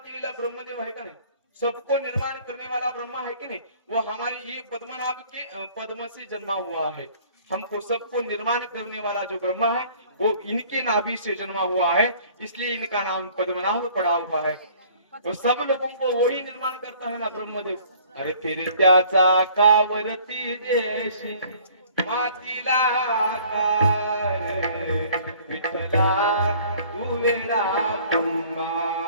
ब्रह्मदेव आहे का नाही, सबको निर्माण करने वाला ब्रह्मा है कि नहीं, वो हमारी ये पद्मनाभ के पद्म से जन्मा हुआ है. हमको सबको निर्माण करने वाला जो ब्रह्मा है वो इनके नाभि से जन्मा हुआ है, इसलिए इनका नाम पद्मनाभ पड़ा हुआ है. वो सब लोगों को वही निर्माण करता है ना ब्रह्मदेव. अरे फिर त्याचा कावरती देशी मातीला विठ्ठला तू वेडा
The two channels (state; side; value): inverted; both; correlation -0.54